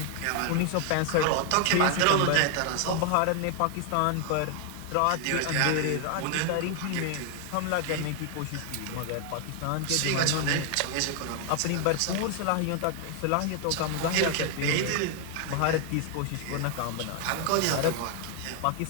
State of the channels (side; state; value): both; different; correlation 0.00